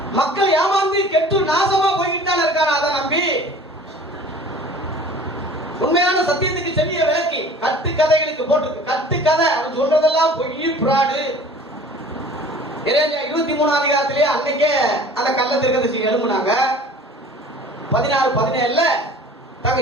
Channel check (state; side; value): normal; both; correlation 0.46